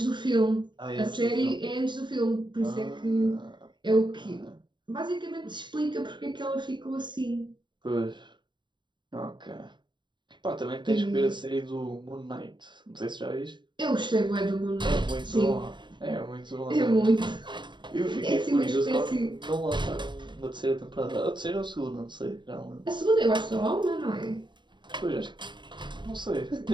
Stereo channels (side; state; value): left; late; 0.22 ms